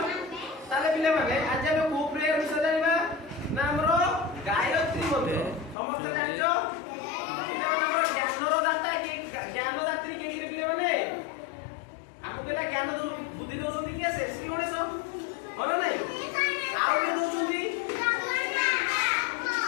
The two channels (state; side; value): drops out; right; at 5.8 s